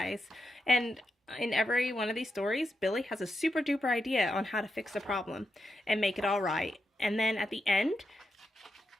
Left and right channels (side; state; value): both; normal; correlation 0.86